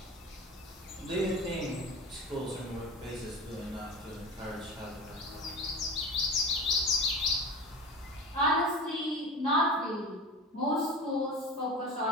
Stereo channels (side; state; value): both; normal; correlation 0.32